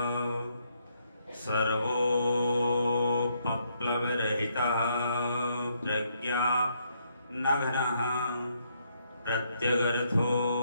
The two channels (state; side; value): inverted; both; correlation -0.73